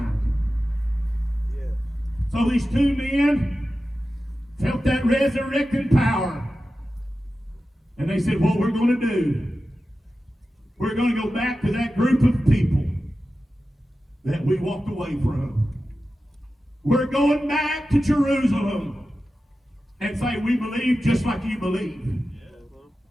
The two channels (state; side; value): normal; both; correlation 0.93